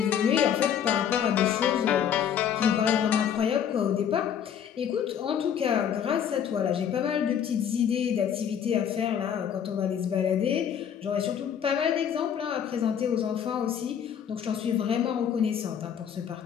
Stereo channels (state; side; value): quieter; right; 8.6 dB